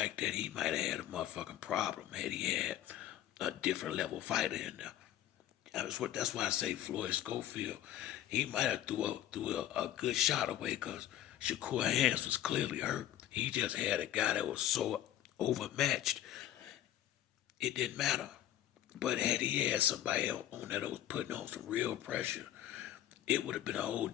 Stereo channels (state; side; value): quieter; right; 12.4 dB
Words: that, he might have had a motherfucking problem had he had a different level fighter in there. That's why I say Floyd Schofield. He might have threw a good shot away because Shakur hands was clearly hurt. He just had a guy that was so overmatched, it didn't matter. But had he had somebody else on that was putting on some real pressure, it would have been a whole